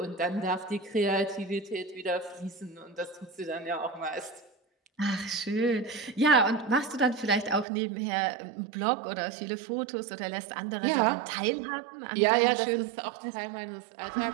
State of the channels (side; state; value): left; drops out; at 7.7 s